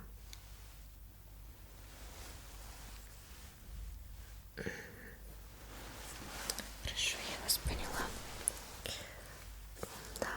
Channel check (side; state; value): both; identical; correlation 1.00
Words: Хорошо, я вас поняла. Да.